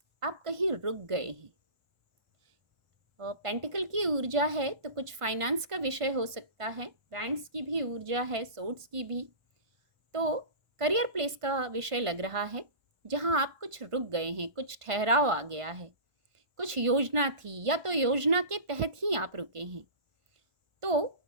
आप कहीं रुक गए हैं। और पेंटिकल की ऊर्जा है, तो कुछ फाइनेंस का विषय हो सकता है। वैंड्स की भी ऊर्जा है, सोर्ड्स की भी। तो करियर प्लेस का विषय लग रहा है, जहां आप कुछ रुक गए हैं, कुछ ठहराव आ गया है, कुछ योजना थी या तो योजना के तहत ही आप रुके हैं, तो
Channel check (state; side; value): late; left; 1.5 ms